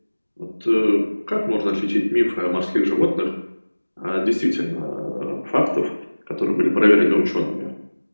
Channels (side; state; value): both; inverted; correlation -1.00